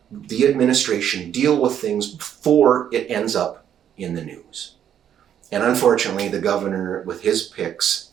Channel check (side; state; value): left; quieter; 9.6 dB